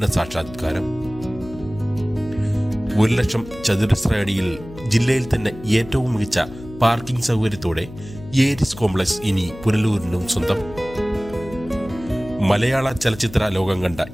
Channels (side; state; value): left; noise; hum, 16 dB below the sound